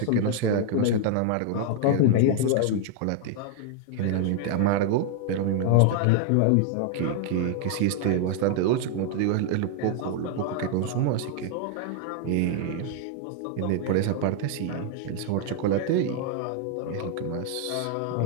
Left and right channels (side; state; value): both; different; correlation 0.00